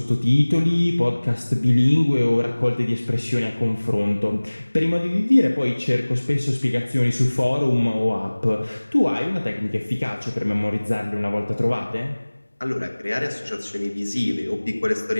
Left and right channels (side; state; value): both; inverted; correlation -1.00